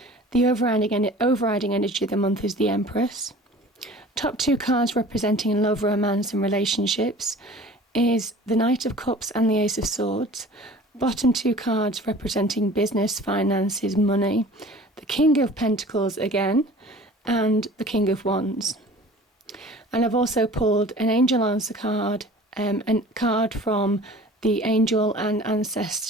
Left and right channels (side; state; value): both; normal; correlation 0.45